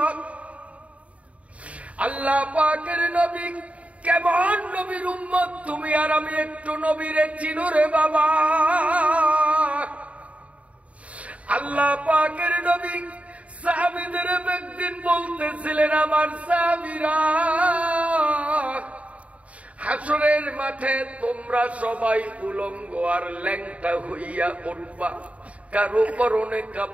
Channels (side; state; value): left; late; 0.066 ms